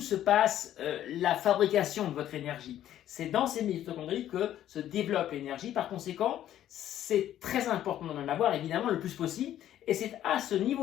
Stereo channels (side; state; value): right; quieter; 11.8 dB